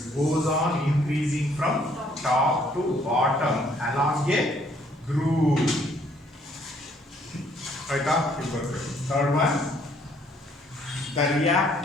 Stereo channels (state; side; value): normal; both; correlation 0.65